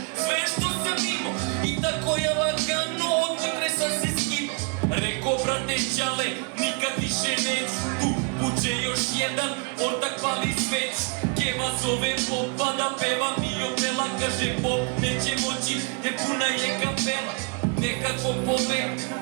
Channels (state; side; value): quieter; left; 36.3 dB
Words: sve što sam imao i tako je lagano od utre sam se skino. Reko brate čale, nikad više neću tu. Buče još jedan, ortak pali sveć. Keva zove popa da peva mi opela. Kaže pop neće moći jer puna je kapela. Nekako povek